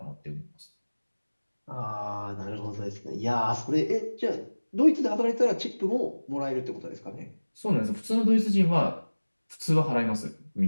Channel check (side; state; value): both; inverted; correlation -1.00